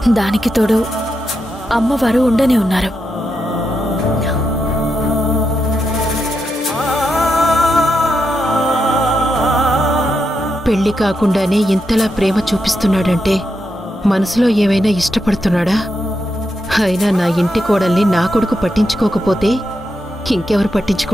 దానికి తోడు అమ్మవారు ఉండనే ఉన్నారు. పెళ్లి కాకుండానే ఇంతలా ప్రేమ చూపిస్తున్నాడంటే మనసులో ఏమైనా ఇష్టపడుతున్నాడా? అయినా నా ఇంటి కోడల్ని నా కొడుకు పట్టించుకోకపోతే ఇంకెవరు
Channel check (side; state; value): both; normal; correlation 0.85